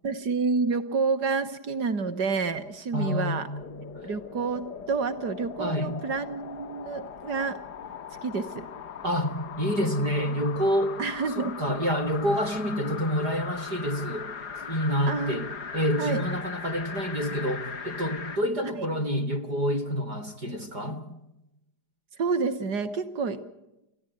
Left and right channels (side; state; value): left; late; 4.9 ms